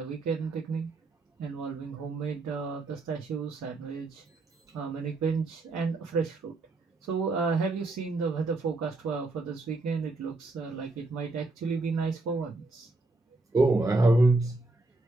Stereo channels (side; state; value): left; quieter; 3.1 dB